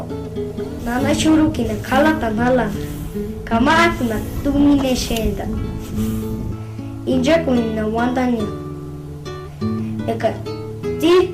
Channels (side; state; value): both; identical; correlation 1.00